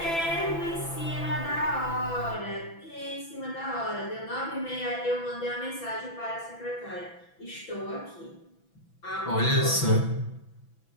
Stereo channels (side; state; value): right; late; 6.0 ms